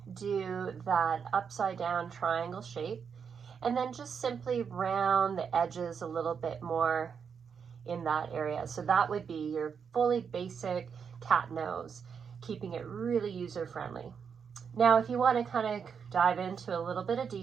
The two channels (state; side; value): quieter; left; 6.6 dB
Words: do that upside down triangle shape and then just simply round the edges a little bit more in that area. So that would be your fully basic cat nose, keeping it really user-friendly. Now, if you want to kind of dive into a little bit of